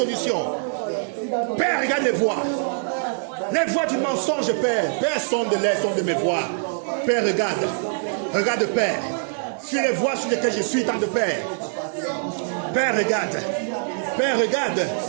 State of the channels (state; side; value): silent; left; digital silence